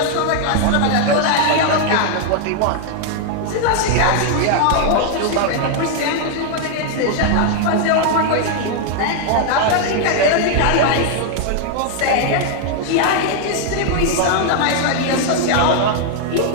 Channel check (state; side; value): different; both; correlation 0.00